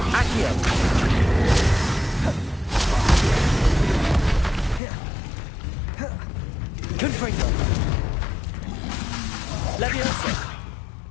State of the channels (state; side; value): drops out; right; at 4.8 s